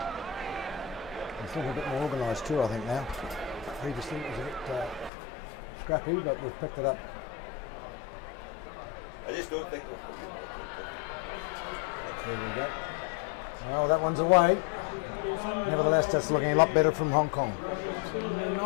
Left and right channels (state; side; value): drops out; right; at 5.1 s